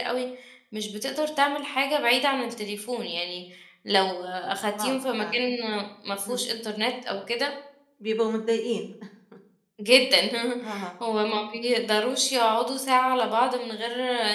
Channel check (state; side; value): identical; both; correlation 1.00